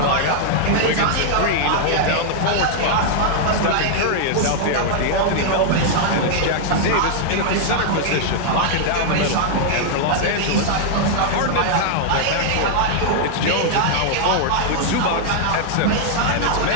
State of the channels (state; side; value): different; both; correlation -0.01